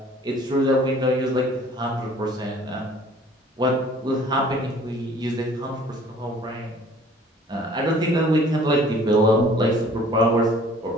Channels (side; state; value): both; normal; correlation 0.52